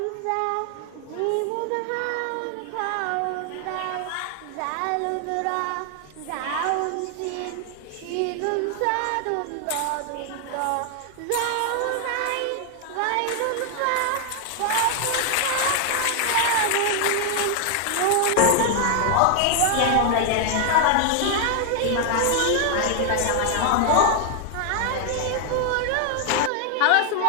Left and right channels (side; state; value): both; different; correlation 0.00